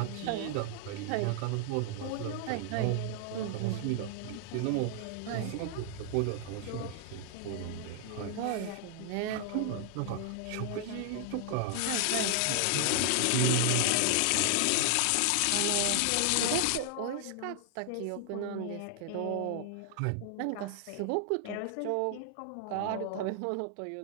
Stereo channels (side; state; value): both; different; correlation 0.00